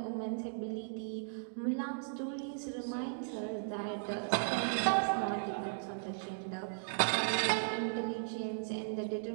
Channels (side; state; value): left; silent; digital silence